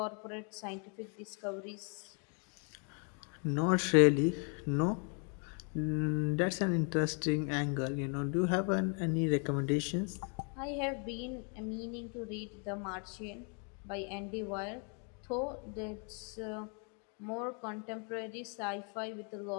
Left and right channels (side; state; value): right; quieter; 40.0 dB